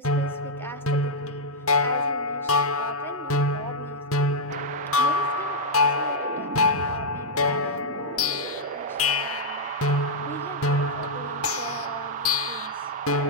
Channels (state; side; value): normal; both; correlation -0.07